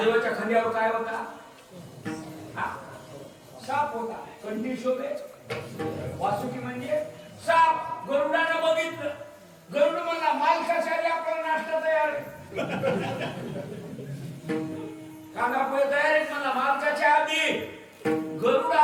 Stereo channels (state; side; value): identical; both; correlation 1.00